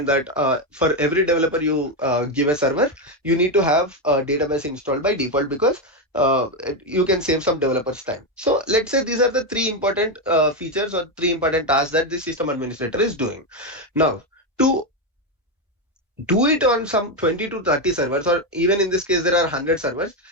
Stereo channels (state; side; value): normal; both; correlation 0.08